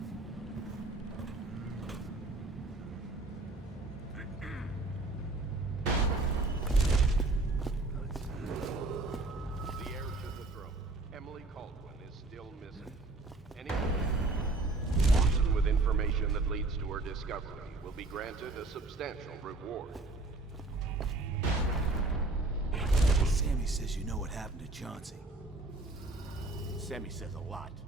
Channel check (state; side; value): quieter; left; 3.0 dB